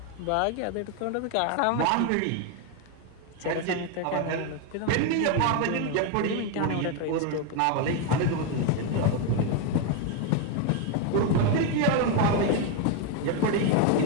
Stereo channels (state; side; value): different; both; correlation 0.01